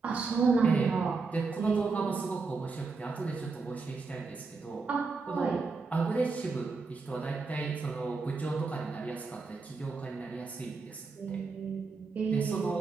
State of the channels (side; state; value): left; quieter; 4.3 dB